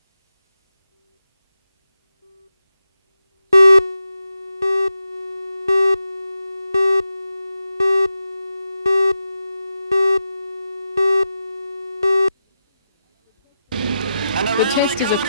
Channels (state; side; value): inverted; both; correlation -0.89